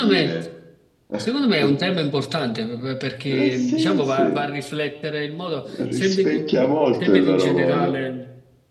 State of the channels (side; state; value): both; identical; correlation 1.00